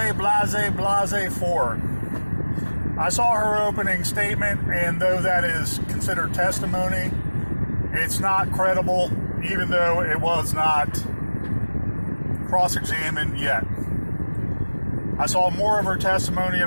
Ford? I saw her opening statement, and though that is considered testimony, it's not credible, even though it was not cross-examined yet. I saw more of her testimony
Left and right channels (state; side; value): inverted; both; correlation -1.00